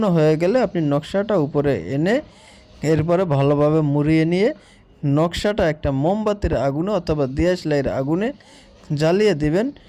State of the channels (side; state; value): both; identical; correlation 1.00